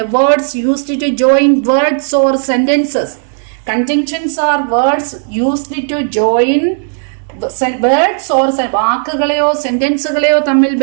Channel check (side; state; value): left; silent; digital silence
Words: words used to join words or sentences. Conjunctions are words used to join words or വാക്കുകളെയോ സെന്റൻസുകളെയോ തമ്മിൽ